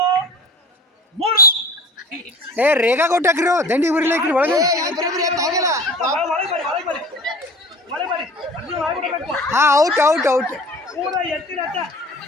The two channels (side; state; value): both; normal; correlation 0.41